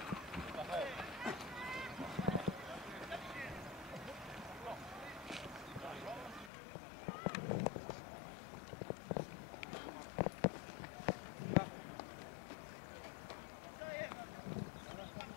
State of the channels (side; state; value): right; drops out; at 6.5 s